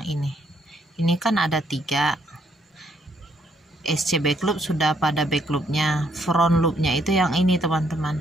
ini. Ini kan ada 3. SC back loop sudah pada back loopnya, front loopnya itu yang ini teman-teman,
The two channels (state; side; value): normal; both; correlation 0.71